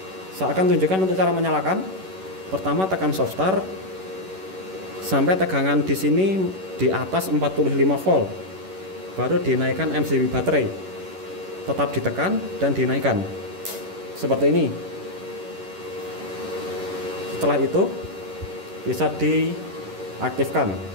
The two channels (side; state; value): left; late; 11 ms